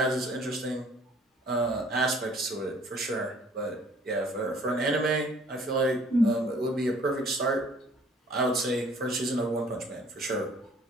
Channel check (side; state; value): both; normal; correlation 0.56